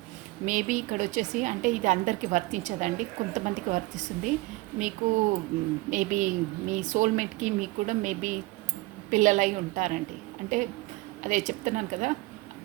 మేబీ ఇక్కడ వచ్చేసి అంటే ఇది అందరికీ వర్తించదండి, కొంతమందికి వర్తిస్తుంది. మీకు మేబీ మీ సోల్మేట్కి మీకు కూడా మేబీ పిల్లలై ఉంటారండి. అంటే అదే చెప్తున్నాను కదా,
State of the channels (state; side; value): quieter; left; 21.6 dB